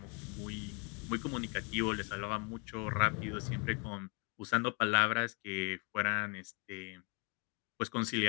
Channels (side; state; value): right; quieter; 34.3 dB